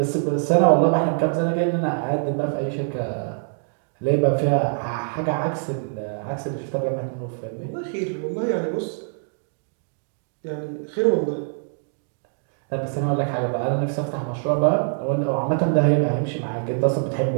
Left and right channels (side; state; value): left; silent; digital silence